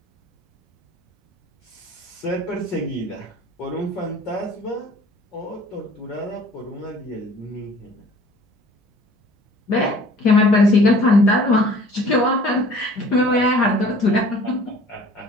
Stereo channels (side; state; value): both; normal; correlation 0.51